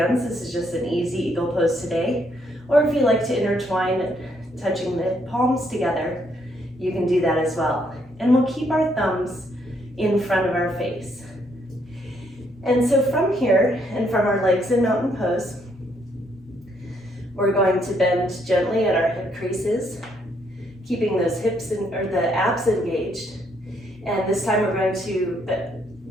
This is just an easy eagle pose today. Or if you like to intertwine, touching the palms together, you can do that as well. And we'll keep our thumbs in front of our face. And so from here, and from our legs in mountain pose, we're going to bend gently at our hip creases, keeping those hips or the abs engaged. And this time we're going to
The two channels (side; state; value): both; normal; correlation 0.72